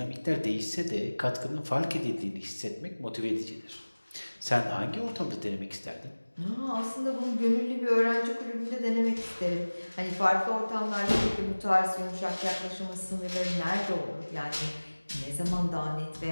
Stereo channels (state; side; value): inverted; both; correlation -1.00